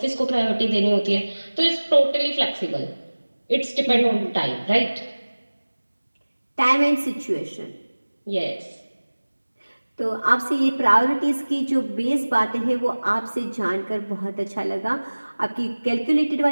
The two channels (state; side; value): inverted; both; correlation -1.00